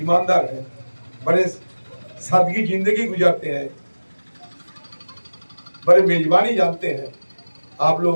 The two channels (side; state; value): both; inverted; correlation -1.00